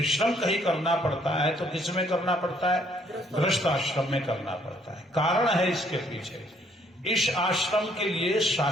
कहीं करना पड़ता है तो किस में करना पड़ता है, गृहस्थ आश्रम में करना पड़ता है। कारण है इसके पीछे। इस आश्रम के लिए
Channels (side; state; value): both; normal; correlation 0.66